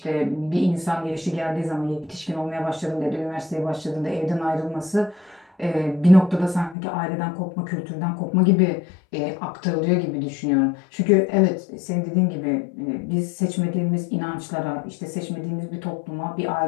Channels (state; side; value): drops out; right; at 6.8 s